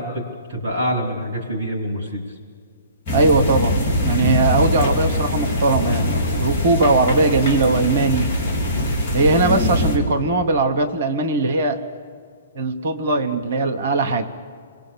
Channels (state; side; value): inverted; both; correlation -0.47